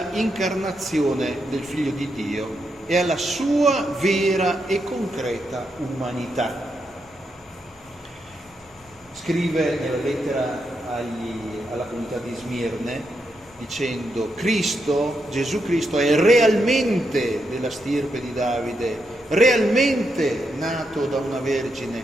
incarnazione del Figlio di Dio e alla sua vera e concreta umanità. Scrive nella lettera alla comunità di Smirne dicendo: Cristo, Gesù Cristo, è realmente della stirpe di Davide, realmente nato da una vergine,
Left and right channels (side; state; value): both; normal; correlation 0.82